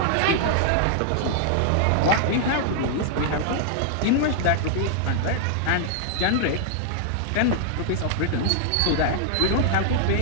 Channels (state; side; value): different; both; correlation -0.01